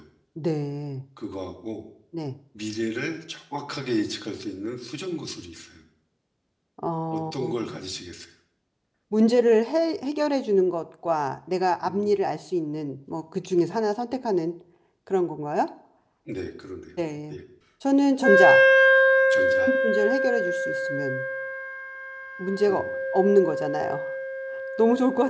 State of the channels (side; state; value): both; identical; correlation 1.00